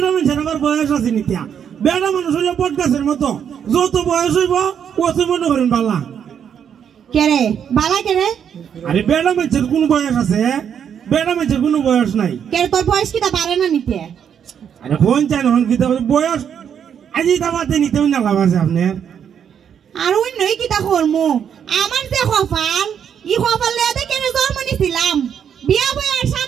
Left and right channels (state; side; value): quieter; left; 8.2 dB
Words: মানুষের আমার বয়স আছে নিতিয়া বেড়া মানুষ হইলে বট গাছের মতো যত বয়স হইব অত মনে করেন বালা কে রে বালা কে রে আরে বেড়া মানুষের কোন বয়স আছে বেড়া মানুষের কোনো বয়স নাই কে তোর বয়স কিটা পারে না নিতে আরে ফোন চাই না কিতা বয়স আজি দাবাতে নিতেও না লাভ আছে আপনার আর ওই নই কিটা করমু আমার যে কপাল ই কপাল লেদে কেন জন্ম নিছিলাম বিয়া বই আর